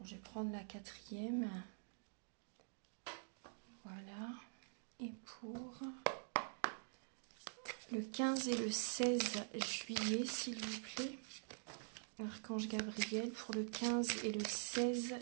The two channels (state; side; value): silent; left; digital silence